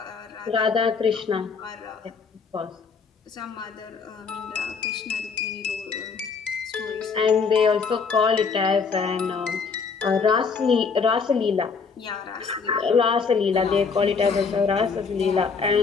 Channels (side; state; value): right; quieter; 5.3 dB